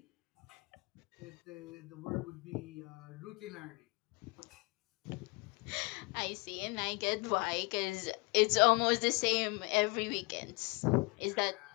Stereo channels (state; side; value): quieter; right; 27.4 dB